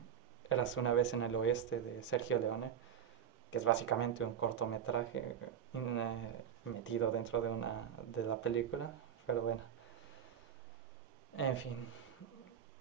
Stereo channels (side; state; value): left; quieter; 8.8 dB